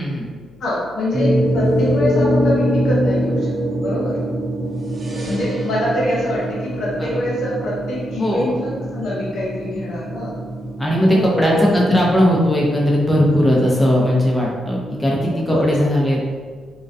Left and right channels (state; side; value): noise; left; hum, 27 dB below the sound